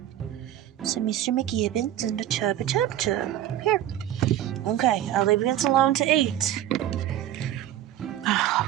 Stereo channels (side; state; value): left; quieter; 12.3 dB